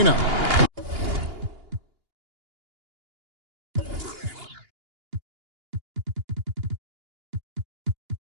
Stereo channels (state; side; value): late; left; 2.8 ms